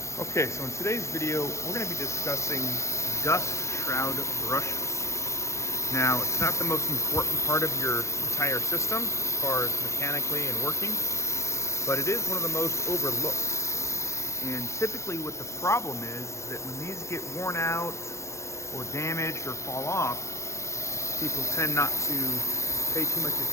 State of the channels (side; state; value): right; late; 0.14 ms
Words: Okay, so in today's video, we're going to be discussing dust shroud brushes. Now, it's not the most important part of your entire system as far as mechanically and working, but it is one of the most overlooked. And typically what the problem is that when these get worn out or damaged or fall off, people tend not to pay too much